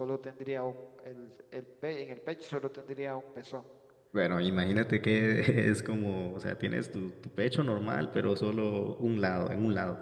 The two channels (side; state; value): both; identical; correlation 1.00